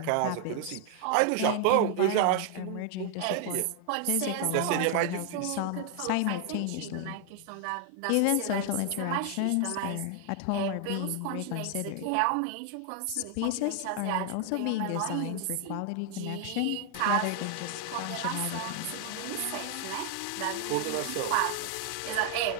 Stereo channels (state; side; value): different; both; correlation 0.00